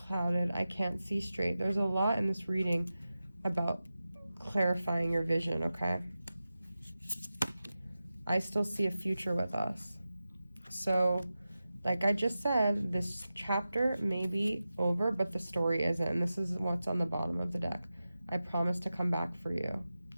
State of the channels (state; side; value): inverted; both; correlation -0.93